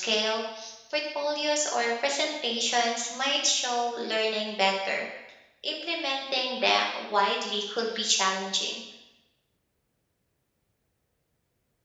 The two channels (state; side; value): identical; both; correlation 1.00